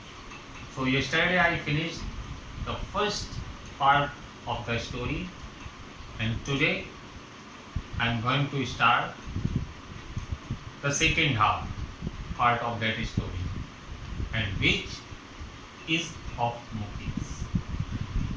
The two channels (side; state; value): both; identical; correlation 1.00